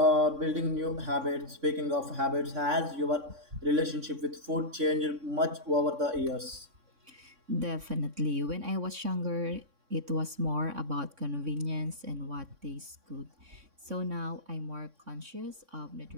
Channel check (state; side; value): late; left; 3.6 ms